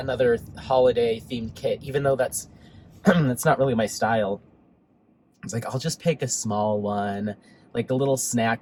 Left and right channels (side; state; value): both; identical; correlation 1.00